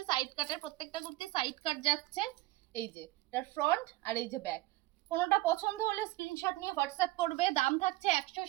সাইড কাটের প্রত্যেকটা কুর্তি সাইড কাট যাচ্ছে। এই যে এটার ফ্রন্ট আর এই যে ব্যাক। কোনোটা পছন্দ হলে স্ক্রিনশট নিয়ে হোয়াটসঅ্যাপ করবে। দাম থাকছে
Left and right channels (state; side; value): quieter; left; 18.6 dB